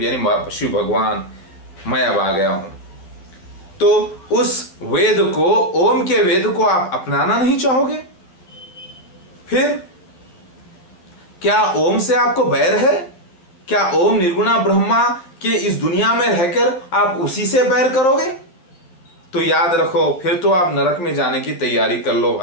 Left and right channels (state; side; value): late; right; 11 ms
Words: यानी शिव भगवान, मैं अब आ गया हूं। तो उस वेद को, ओम के वेद को आप अपनाना नहीं चाहोगे? फिर क्या ओम से आपको बैर है? क्या ओम निर्गुणा ब्रह्मा के इस दुनिया में रहकर आप उसी से बैर करोगे? तो याद रखो फिर तो आप नरक में जाने की तैयारी कर लो